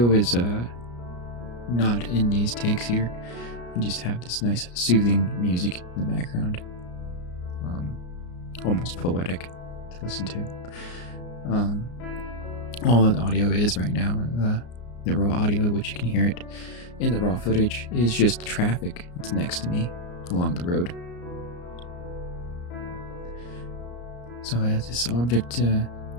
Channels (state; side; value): late; right; 34 ms